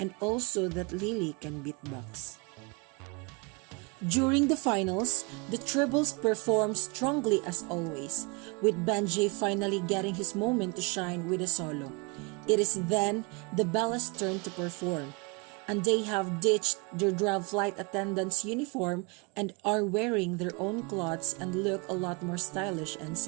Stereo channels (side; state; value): left; quieter; 29.9 dB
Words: also that Lily can beatbox. During the finals, the tribbles perform strongly as always, with Benji finally getting his moment to shine with a solo. It is then the Bellas' turn to perform, and they have ditched their draft flight attendant's uniform and are wearing their own clothes and look a lot more stylish and